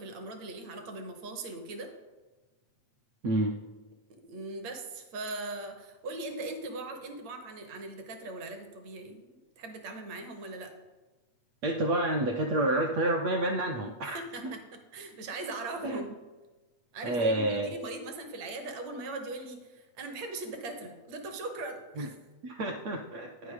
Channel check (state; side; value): late; left; 8.7 ms